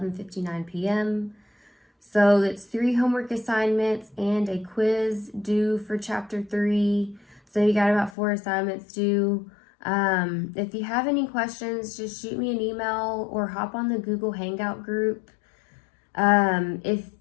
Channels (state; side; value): drops out; right; at 8.1 s